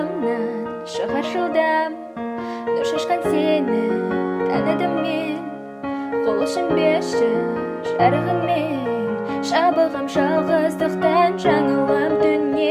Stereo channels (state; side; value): identical; both; correlation 1.00